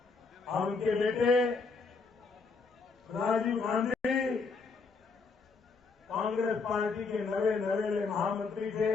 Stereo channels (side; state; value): right; quieter; 4.5 dB